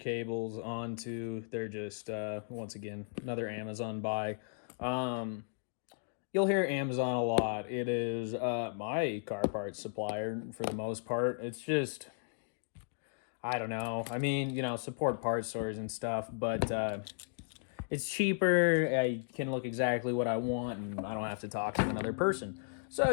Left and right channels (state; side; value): silent; right; digital silence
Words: onto. They're just, once again, another Amazon buy. You'll hear Amazon a lot. It is my car parts supplier for the most part. It's just, I don't know. I mean, you know, support parts stores and stuff, but it's cheaper. I can look exactly what I want, and I don't have to talk to another person. So,